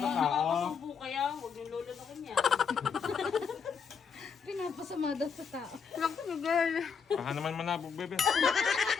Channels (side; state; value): right; quieter; 6.2 dB